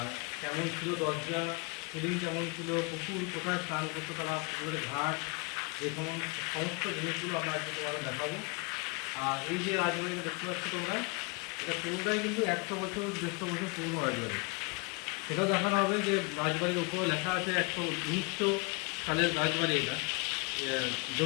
কেমন ছিল দরজা, সিলিং কেমন ছিল, পুকুর কোথায় স্নান করতো তারা, পুকুরের ঘাট, দেখুন সমস্ত জিনিসগুলো আমরা আজকে তোমাদের দেখাবো। আর এই যে রাজবাড়িটা দেখতে পাচ্ছ তোমরা, এটা পুরোটাই কিন্তু 100 বছর 150 বছর পুরনো রাজবাড়ি। সেটাও দেখানো হবে যে রাজবাড়ির উপরে লেখা আছে 1900 সালের রাজবাড়ি, এটা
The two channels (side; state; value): right; quieter; 30.1 dB